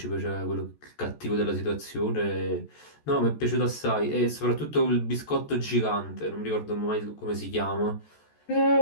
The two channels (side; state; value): right; late; 14 ms